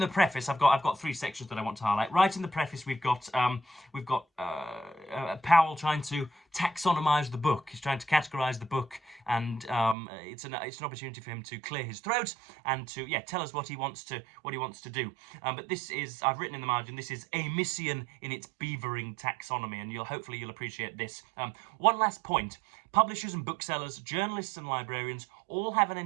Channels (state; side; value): drops out; left; at 10.0 s